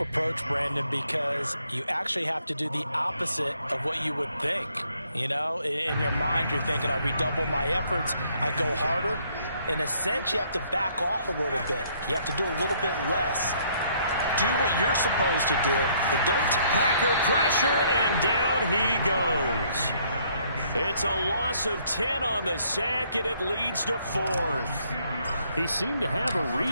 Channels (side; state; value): both; inverted; correlation -0.66